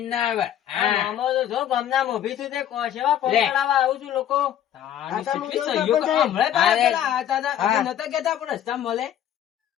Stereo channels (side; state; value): right; quieter; 10.7 dB